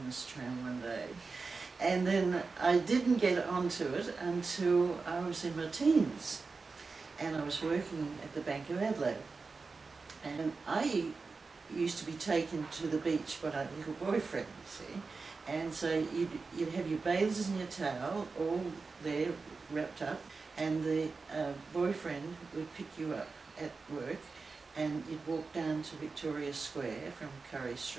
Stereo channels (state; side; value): quieter; left; 4.3 dB